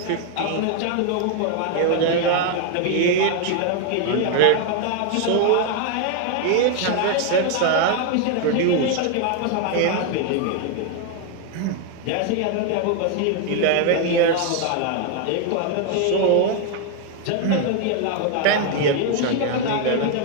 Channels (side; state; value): both; different; correlation 0.01